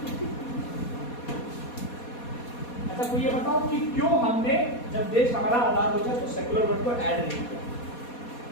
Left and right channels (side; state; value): right; late; 4.2 ms